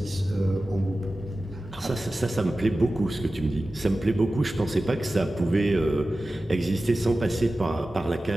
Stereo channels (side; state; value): both; normal; correlation 0.95